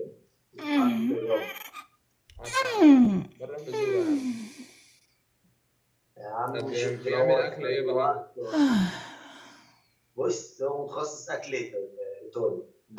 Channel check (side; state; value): both; identical; correlation 1.00